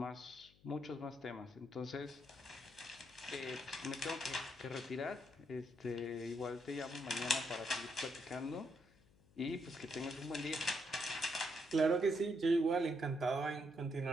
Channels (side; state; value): left; noise; hum, 28 dB below the sound